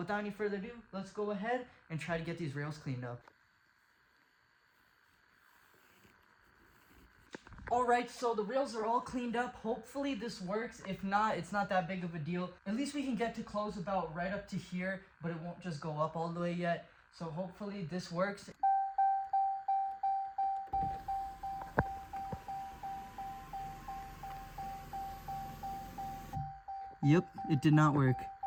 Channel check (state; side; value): identical; both; correlation 1.00